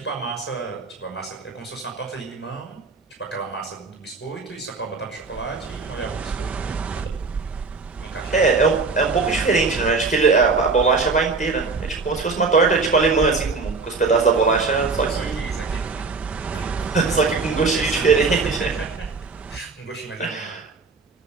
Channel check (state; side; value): quieter; left; 4.2 dB